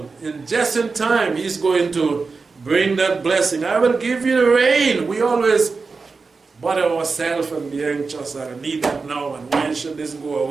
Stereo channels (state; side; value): quieter; left; 4.4 dB